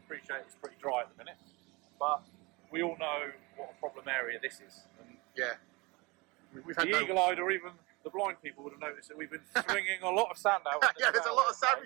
appreciate it's pretty dry at the minute, but we all know what a problem area this is. And we've had the eagle-eyed or even the blind people would have noticed that we've been swinging a lot of sand out. There's a lot of sand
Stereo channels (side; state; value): left; quieter; 25.2 dB